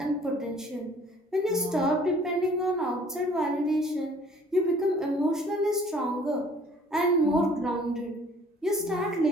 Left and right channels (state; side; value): normal; both; correlation 0.54